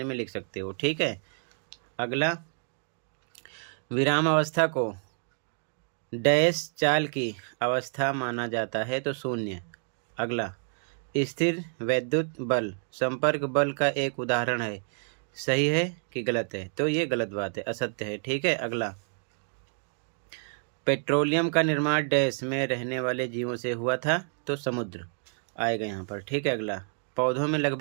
में लिख सकते हो। ठीक है, अगला, विराम अवस्था को डैश चाल की अवस्था माना जाता है, तो शून्य। अगला, स्थिर वैद्युत बल संपर्क बल का एक उदाहरण है, सही है कि गलत है? तो ये गलत बात है, असत्य है। ठीक है, अगला, पेट्रोलियम का निर्माण डैश में रहने वाले जीवों से हुआ था, तो समुद्र आएगा यहाँ पर। ठीक है, अगला, पौधों में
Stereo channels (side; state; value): left; silent; 59 dB below the other